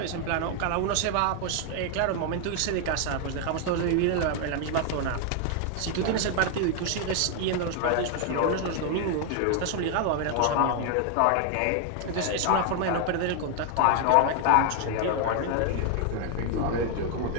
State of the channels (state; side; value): different; both; correlation 0.01